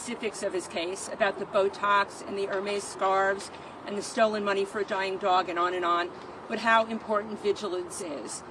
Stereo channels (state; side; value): identical; both; correlation 1.00